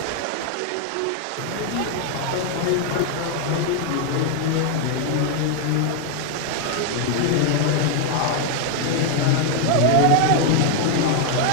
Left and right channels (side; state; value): both; different; correlation 0.00